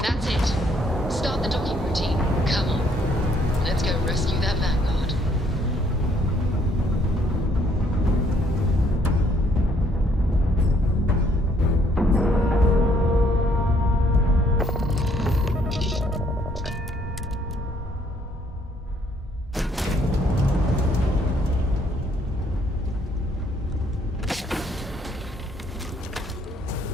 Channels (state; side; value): normal; both; correlation 0.66